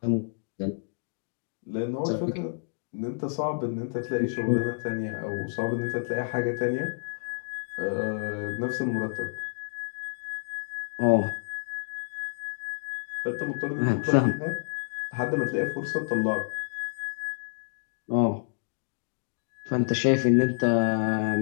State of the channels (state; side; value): silent; right; digital silence